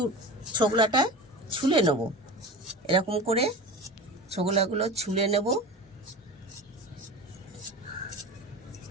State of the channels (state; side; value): normal; both; correlation 0.31